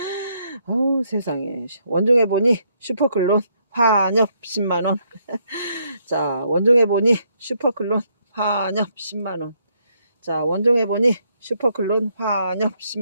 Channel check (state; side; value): inverted; both; correlation -0.73